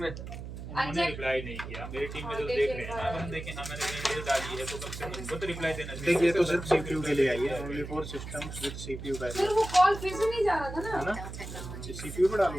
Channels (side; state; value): right; noise; hum, 9 dB below the sound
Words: उन्होंने रिप्लाई नहीं किया। मेरी टीम में जो देख रहे हैं ना, हम देखें हाँ मैंने वीडियो डाली है तो कम से कम उनको तो रिप्लाई देना चाहिए। देखिए तो सिर्फ सीपीयू के लिए आई है। Only for systems with CPU फिर बैरियर वो कॉल फिर से नहीं जा रहा था है ना। ना? सीपीयू पे